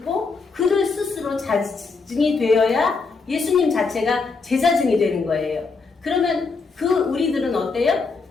그를 스스로 자증이 되어야 예수님 자체가 제자증이 되는 거예요. 그러면 우리들은 어때요?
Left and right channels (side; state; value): right; quieter; 4.4 dB